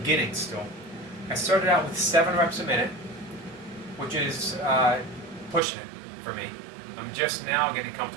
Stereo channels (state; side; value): drops out; left; at 5.6 s